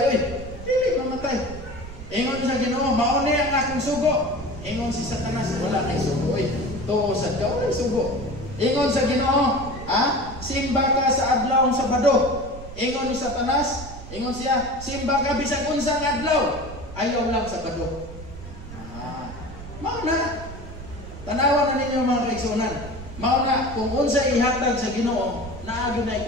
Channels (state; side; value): noise; right; rumble, 13 dB below the sound